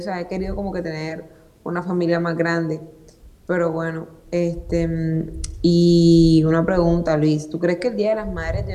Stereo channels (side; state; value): both; identical; correlation 1.00